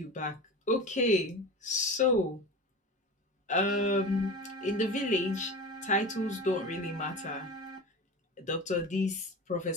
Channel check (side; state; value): both; normal; correlation 0.30